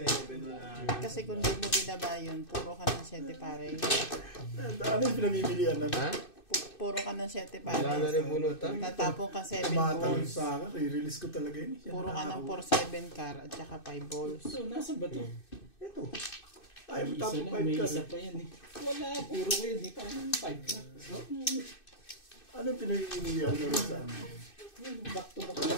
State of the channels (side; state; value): right; late; 2.6 ms